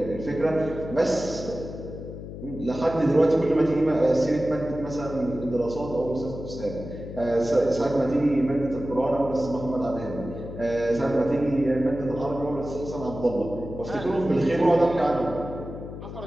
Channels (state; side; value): noise; left; hum, 10 dB below the sound